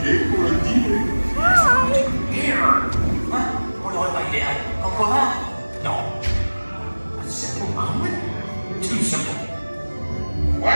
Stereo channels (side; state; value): both; inverted; correlation -1.00